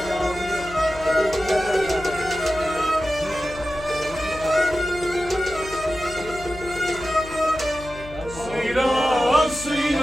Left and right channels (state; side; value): noise; left; hum, 15 dB below the sound